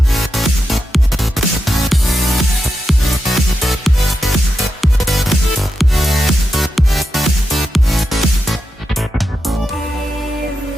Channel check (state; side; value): normal; both; correlation 0.88